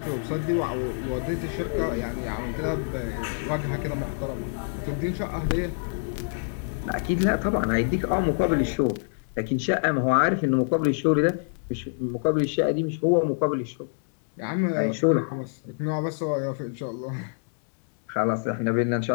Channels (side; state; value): right; silent; digital silence